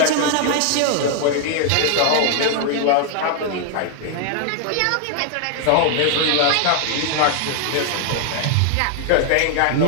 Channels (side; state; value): both; different; correlation 0.00